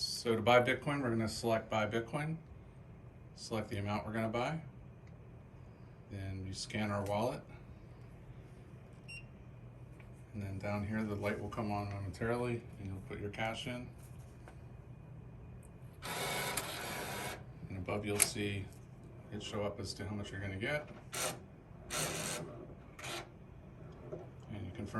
So to buy Bitcoin, we're going to select buy Bitcoin, select the amount we're going to buy, then you scan our wallet, and then down here the light will come on momentarily and you'll put your cash in, and above you'll see it show up as to how much you're going to get, and you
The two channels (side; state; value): both; identical; correlation 1.00